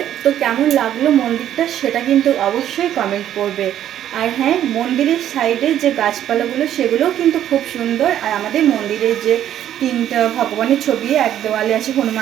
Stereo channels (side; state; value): left; quieter; 11.1 dB